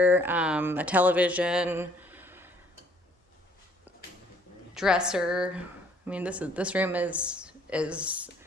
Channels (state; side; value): normal; both; correlation 0.61